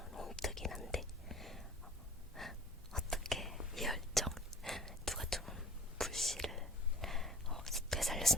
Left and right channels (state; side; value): normal; both; correlation 0.46